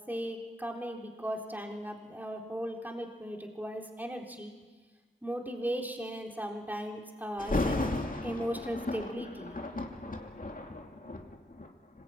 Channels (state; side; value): normal; both; correlation 0.76